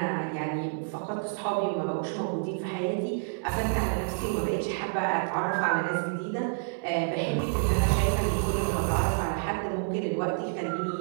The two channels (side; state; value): left; silent; digital silence